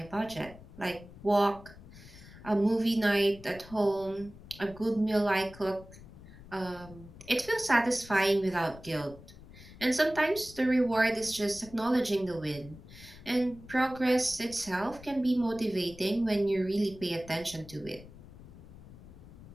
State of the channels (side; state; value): left; noise; rumble, 18 dB below the sound